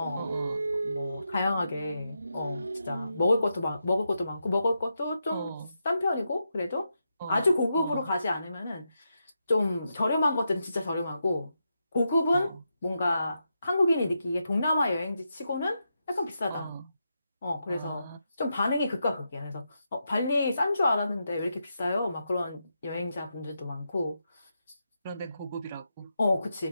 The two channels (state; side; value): inverted; both; correlation -0.85